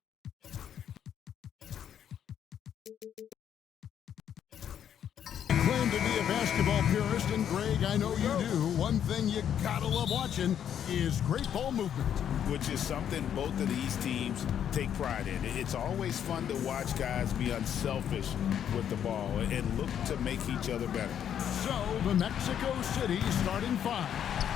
claim to be a basketball purist, and Greg, I know you do, one thing you gotta love watching is great ball movement. Which is something both of these teams take pride in. It's always fun to watch guys be unselfish with the ball and look to make each other better. So, the Mexico City starting five.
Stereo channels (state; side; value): quieter; right; 9.3 dB